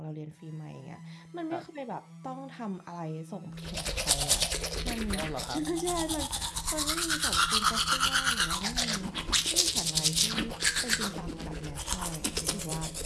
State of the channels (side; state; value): both; identical; correlation 1.00